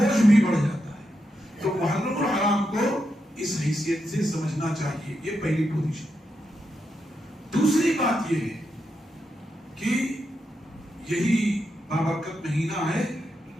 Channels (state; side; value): normal; both; correlation 0.85